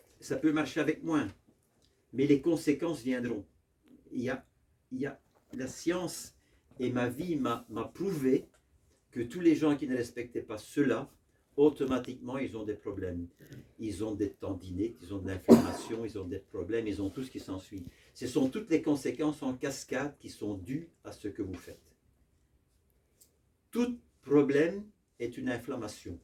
ça peut marcher avec moins. Mais les conséquences viendront. Il y a la science et ma vie m'a prouvé que tous les gens qui ne respectaient pas cela, automatiquement, ils ont des problèmes. Ils ont des tendinites, ils ont de l'inflammation, ils ont des problèmes, ils ont tout ce qui s'ensuit. Ce sont toutes les conséquences en cascade qui sont dues à ce que vous faites. Tout problème est une inflammation.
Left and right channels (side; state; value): both; identical; correlation 1.00